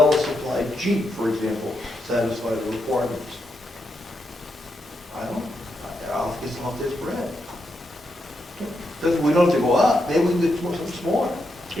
Jeep, for example, satisfy the requirements? I don't, I'll guess I'll have this Brad. We don't have to go up, maybe we can get something smaller.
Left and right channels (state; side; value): normal; both; correlation 0.83